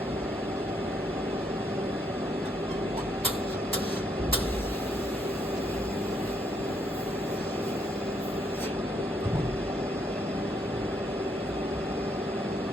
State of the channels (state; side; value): normal; both; correlation 0.73